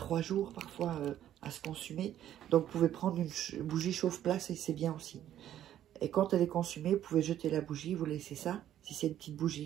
jours parfois à se consumer. Donc, vous pouvez prendre une bougie chauffe-place et c'est bien aussi. Et quand elle est consumée, vous pouvez jeter la bougie, vous laissez ça, si c'est une petite bougie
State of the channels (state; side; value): quieter; left; 11.5 dB